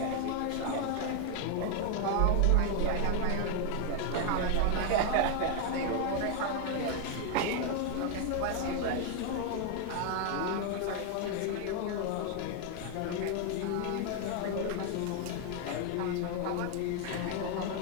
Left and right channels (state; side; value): different; both; correlation 0.00